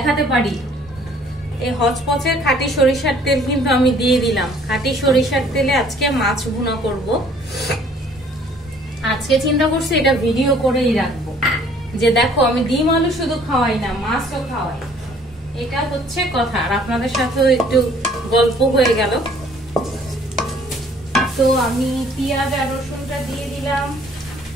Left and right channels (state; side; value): normal; both; correlation 0.57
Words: পারি। এই হচপচের খাঁটি সরিষার তেল কিন্তু আমি দিয়ে দিলাম। খাঁটি সরিষার তেলে আজকে মাছ ভুনা করব। আজকে চিন্তা করছি এটা ভিডিও করেই রাখবো, যে দেখো আমি ডিম আলু শুধু খাওয়াই না, মাছও খাওয়াই। এটা হচ্ছে কথা। আর আপনাদের সাথেও একটু গল্প হয়ে গেল। তো আমি পেঁয়াজ আর রসুনটা দিয়ে দিলাম।